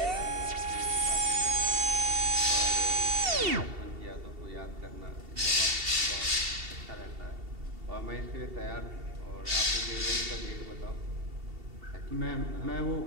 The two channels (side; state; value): left; late; 2.7 ms